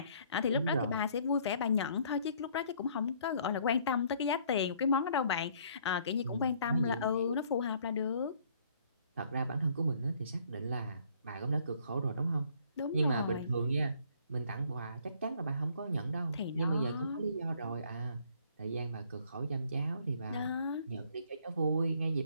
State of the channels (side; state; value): both; inverted; correlation -0.62